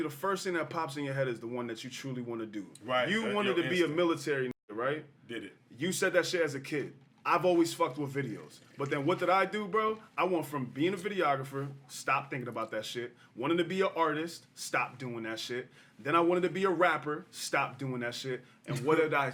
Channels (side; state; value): both; identical; correlation 1.00